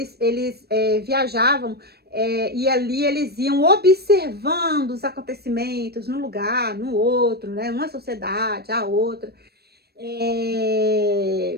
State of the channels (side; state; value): left; late; 0.47 ms